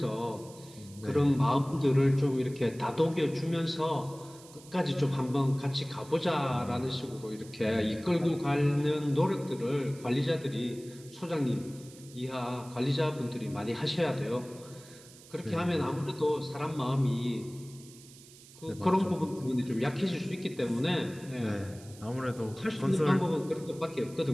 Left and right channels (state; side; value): noise; right; hiss, 21 dB below the sound